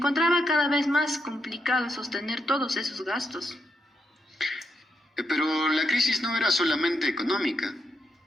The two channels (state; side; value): normal; both; correlation 0.81